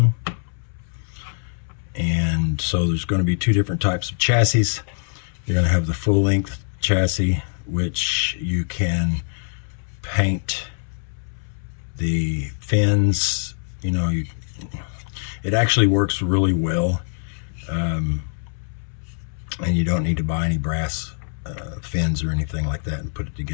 And so there's going to be two different types of chassis. You're going to have the full length chassis, which you can paint the fins. You know, it actually works really well, and you don't need to buy any brass fins or anything like that and put it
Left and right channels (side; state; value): right; silent; 63 dB below the other